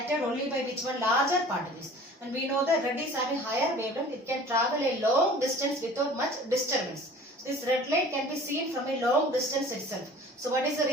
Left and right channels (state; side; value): normal; both; correlation 0.46